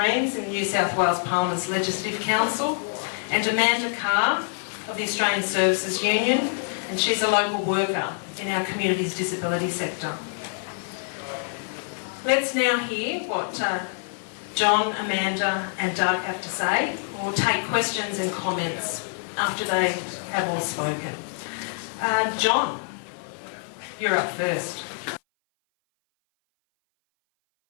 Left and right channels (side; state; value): right; silent; 58 dB below the other